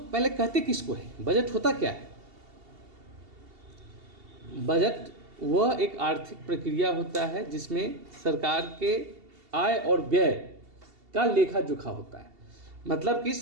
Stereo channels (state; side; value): late; left; 2.7 ms